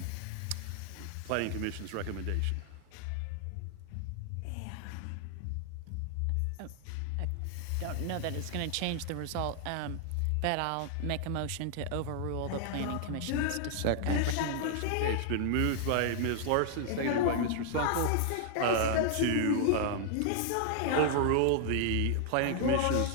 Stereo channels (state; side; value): different; both; correlation -0.01